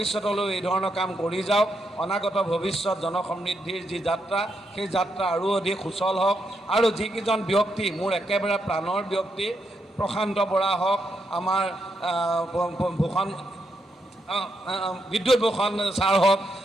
এই ধৰণৰ কাম কৰি যাওক। অনাগত ভৱিষ্যত জনসমৃদ্ধিৰ যি যাত্ৰা, সেই যাত্ৰা আৰু অধিক সুচল হওক। আৰু যিকেইজন ব্যক্তি মোৰ একেবাৰে প্ৰাণৰ ব্যক্তি, প্ৰশান্ত বৰা হওক, আমাৰ ভূষণ বিদ্যুৎ ভূষণ ছাৰ হওক,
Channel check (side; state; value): both; normal; correlation 0.81